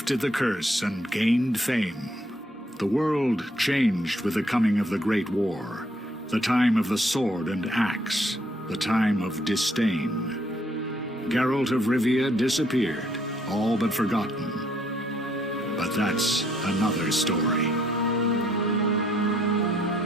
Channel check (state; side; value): normal; both; correlation 0.68